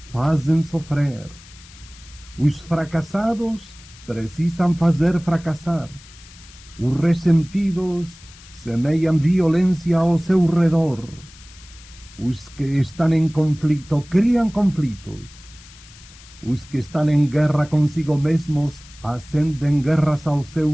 fazem sofrer. Os fracassados precisam fazer fracassar. Os ressentidos semeiam violência ao seu redor. Os que estão em conflito criam conflitos. Os que estão em guerra consigo mesmos acendem guerras ao seu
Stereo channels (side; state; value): left; noise; hiss, 22 dB below the sound